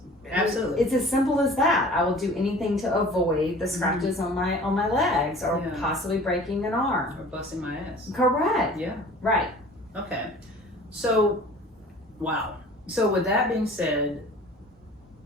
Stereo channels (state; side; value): normal; both; correlation 0.45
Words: Absolutely. It's as simple as that. I will do anything to avoid the scratches on my legs or possibly breaking an arm. Or busting my ass. Correct. Yeah. Right. Okay. So, wow. So with that being said,